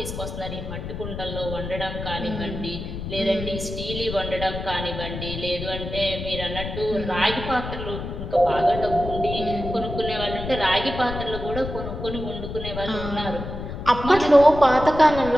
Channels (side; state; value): left; noise; rumble, 7 dB below the sound